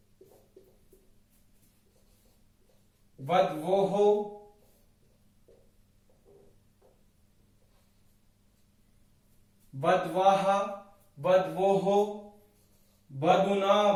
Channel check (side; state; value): both; identical; correlation 1.00